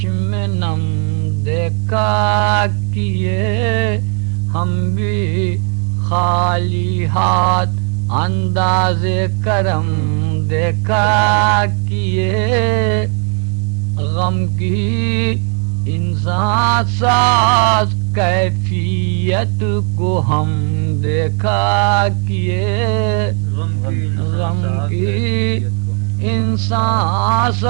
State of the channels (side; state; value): left; quieter; 34.2 dB